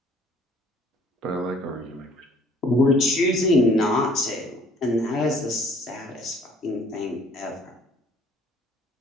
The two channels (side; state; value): both; normal; correlation 0.57